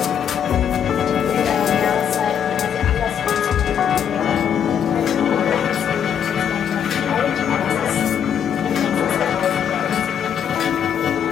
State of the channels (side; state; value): right; quieter; 8.5 dB